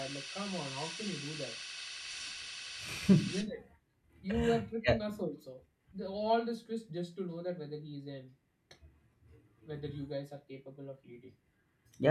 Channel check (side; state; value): both; identical; correlation 1.00